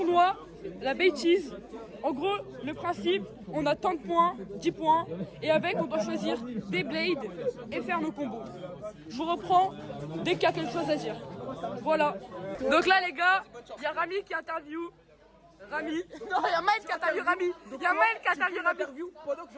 la Bay Cheese. En gros, le principe, on a tant de points, 10 points, et avec on doit choisir des blades et faire nos combos. Je vous reprends dès qu'il y a quelque chose à dire. Voilà. Donc là les gars, il y a Rami qui interview. Rami. Non, il y a Maël qui interview Rami. Il y a Maël qui interview Rami. Pendant que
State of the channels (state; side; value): identical; both; correlation 1.00